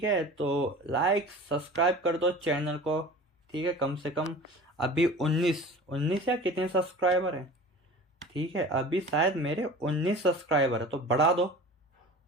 है। तो लाइक सब्सक्राइब कर दो चैनल को, ठीक है। कम से कम अभी 19 या कितने सब्सक्राइबर हैं, ठीक है, अभी शायद मेरे 19 सब्सक्राइबर है, तो बढ़ा दो,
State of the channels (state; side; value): normal; both; correlation 0.39